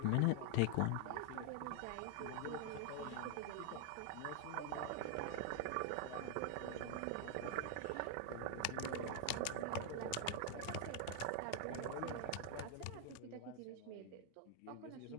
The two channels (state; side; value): different; both; correlation 0.00